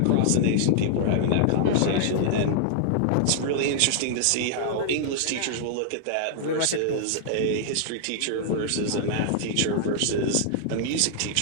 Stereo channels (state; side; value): different; both; correlation -0.01